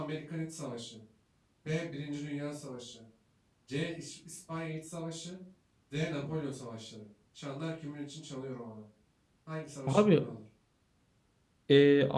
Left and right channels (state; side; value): identical; both; correlation 1.00